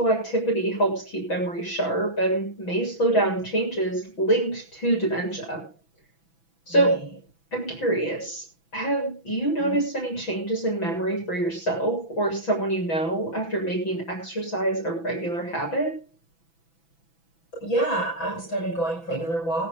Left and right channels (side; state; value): right; late; 6.0 ms